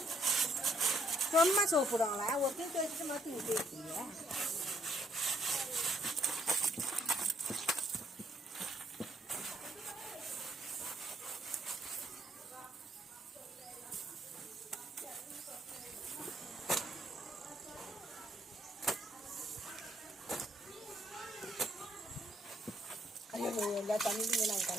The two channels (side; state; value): both; normal; correlation 0.70